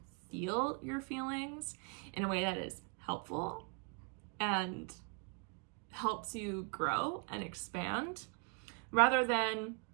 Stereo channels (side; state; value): left; quieter; 38.1 dB